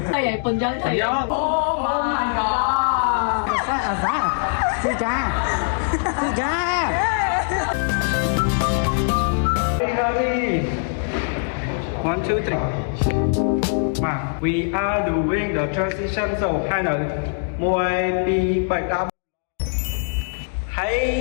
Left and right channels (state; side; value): silent; right; digital silence